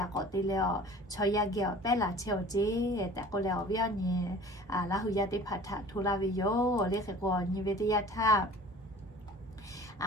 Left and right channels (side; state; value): both; normal; correlation 0.45